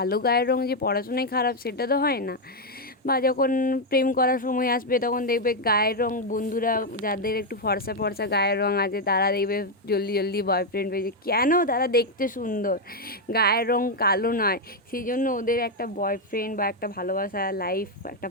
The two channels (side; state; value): both; normal; correlation 0.02